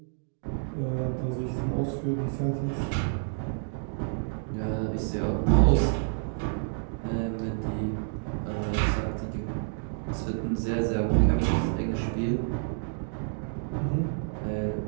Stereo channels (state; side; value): silent; left; digital silence